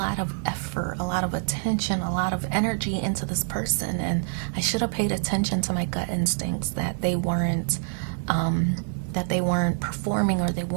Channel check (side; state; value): left; silent; 61 dB below the other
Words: of effort, a lot of attention, a lot of energy into this person, and I should have paid attention to my gut instincts that they weren't performing, or they